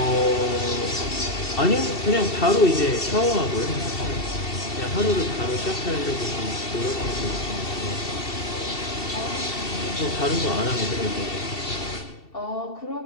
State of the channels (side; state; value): right; late; 2.7 ms